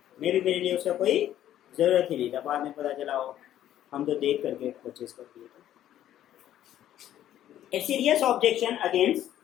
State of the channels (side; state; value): right; quieter; 11.9 dB